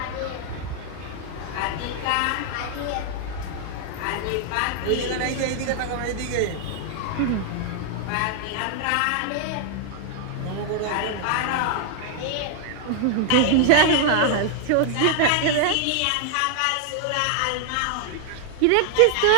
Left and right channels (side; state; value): both; different; correlation 0.00